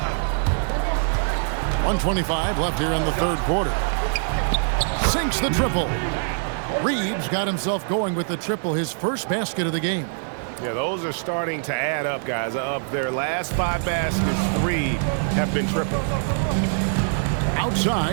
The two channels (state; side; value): silent; left; digital silence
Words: 1:25 left here in the third quarter. Sinks the triple. Reeves got himself going with the triple, his first basket of the game. Yeah, those are starting to add up, guys. Of their last 5 baskets, 3 have been triples.